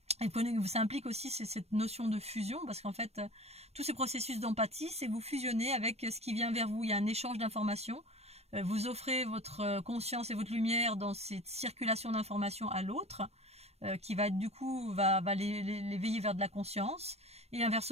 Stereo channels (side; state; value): left; late; 0.31 ms